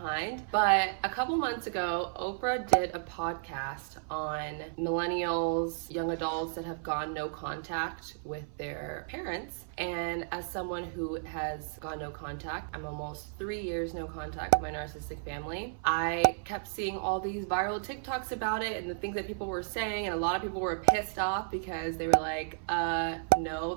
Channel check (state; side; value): silent; left; 56 dB below the other